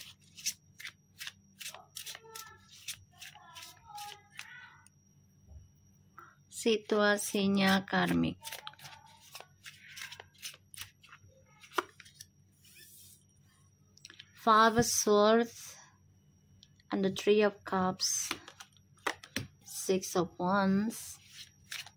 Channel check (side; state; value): both; identical; correlation 1.00